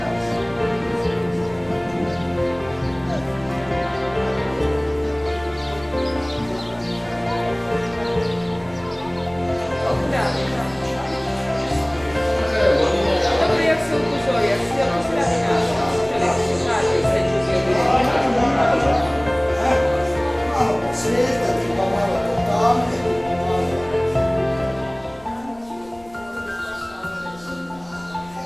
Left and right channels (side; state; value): left; noise; rumble, 25 dB below the sound